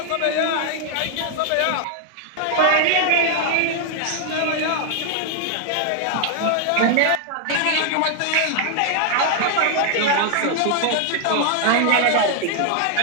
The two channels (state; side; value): different; both; correlation 0.00